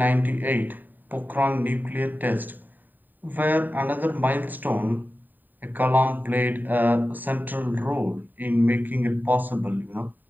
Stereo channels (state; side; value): late; left; 0.089 ms